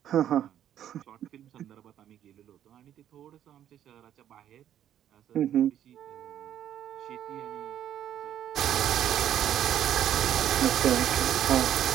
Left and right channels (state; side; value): quieter; left; 10.7 dB